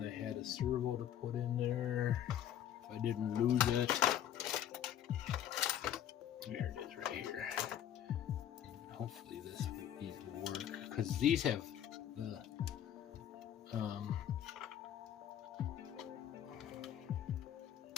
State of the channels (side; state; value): right; quieter; 10.5 dB